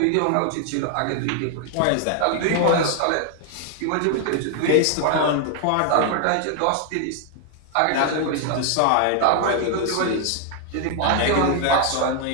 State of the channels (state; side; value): different; both; correlation 0.00